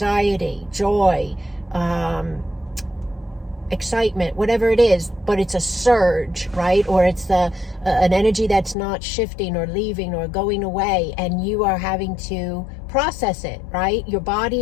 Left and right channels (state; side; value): drops out; right; at 8.8 s